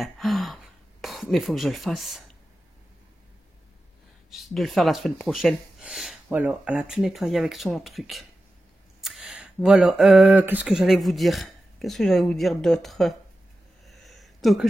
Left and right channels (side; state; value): both; normal; correlation 0.93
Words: Mais il faut que je le fasse. De le faire la semaine prochaine. Voilà, elle a tout nettoyé avec son truc. Voilà, qu'est-ce que j'allais vous dire? Qu'est-ce que j'allais vous dire d'autre? Donc,